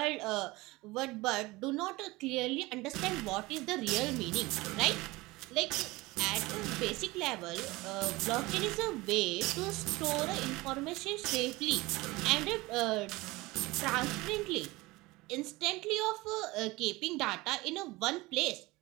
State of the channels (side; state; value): left; quieter; 21.3 dB